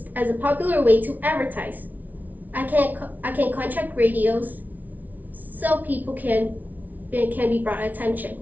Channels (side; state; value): left; late; 0.079 ms